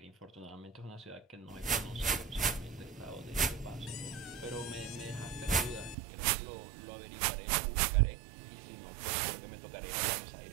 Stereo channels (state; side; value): drops out; left; at 6.0 s